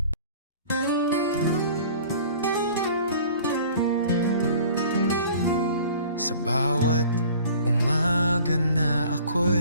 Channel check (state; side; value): inverted; both; correlation -0.47